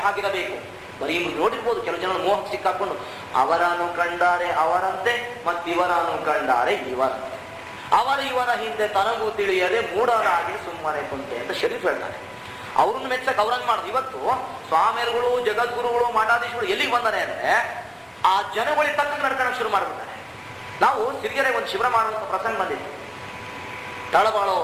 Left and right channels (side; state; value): both; identical; correlation 1.00